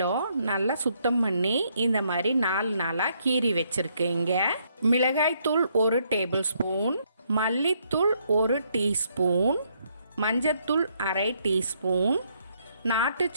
நல்லா சுத்தம் பண்ணி இந்த மாதிரி 4 நாளாக கீறி வச்சுருக்கேங்க. மிளகாய்த்தூள் 1 டேபிள் ஸ்பூன், மல்லித்தூள் 1 டீஸ்பூன், மஞ்சத்தூள் 1/2 டீஸ்பூன், நாட்டு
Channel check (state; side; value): inverted; both; correlation -0.72